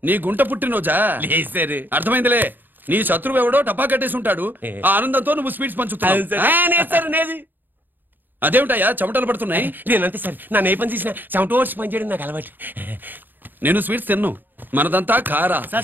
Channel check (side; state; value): left; late; 0.091 ms